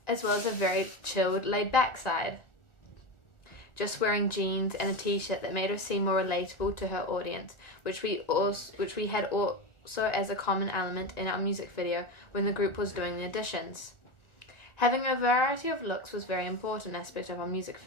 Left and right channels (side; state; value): right; late; 1.4 ms